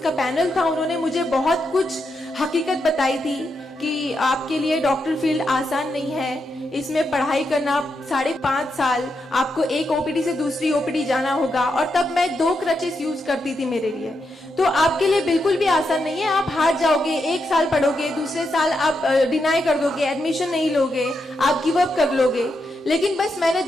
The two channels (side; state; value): both; normal; correlation 0.84